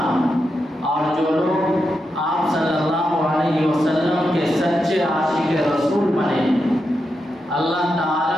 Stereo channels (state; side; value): normal; both; correlation 0.86